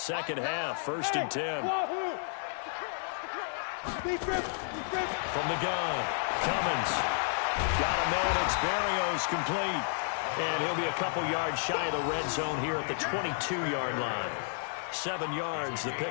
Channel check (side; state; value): right; silent; digital silence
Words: half. 1st and 10. From the gun, Cummins. Got to manage. Berrios complete. And he'll be a couple yards shy of the red zone here at the 22-yard line. 7 yards, the